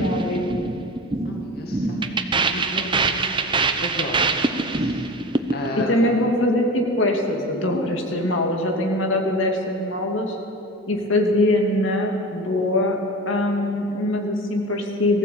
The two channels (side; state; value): both; normal; correlation 0.32